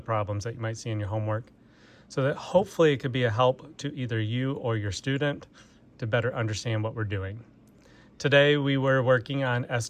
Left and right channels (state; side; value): identical; both; correlation 1.00